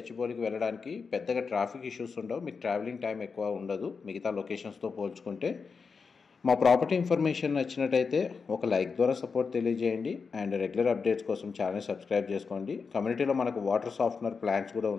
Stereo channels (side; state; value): right; quieter; 5.2 dB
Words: వెళ్ళడానికి పెద్దగా ట్రాఫిక్ ఇష్యూస్ ఉండవు. మీకు ట్రావెలింగ్ టైం ఎక్కువ ఉండదు మిగతా లొకేషన్స్తో పోల్చుకుంటే. మా ప్రాపర్టీ ఇన్ఫర్మేషన్ నచ్చినట్టయితే ఒక లైక్ ద్వారా సపోర్ట్ తెలియజేయండి అండ్ రెగ్యులర్ అప్డేట్స్ కోసం ఛానల్ సబ్స్క్రైబ్ చేసుకోండి. కమ్యూనిటీలో మనకు వాటర్ సాఫ్ట్నర్ ప్లాంట్స్ కూడా